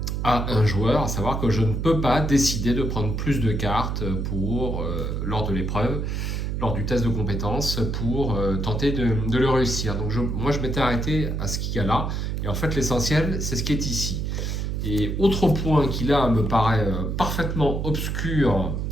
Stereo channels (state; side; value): noise; right; hum, 2 dB below the sound